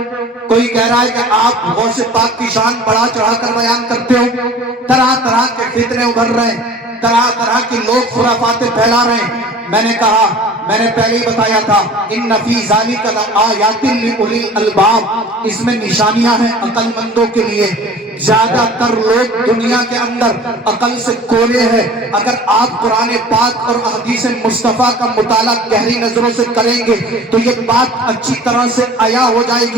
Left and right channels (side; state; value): both; normal; correlation 0.44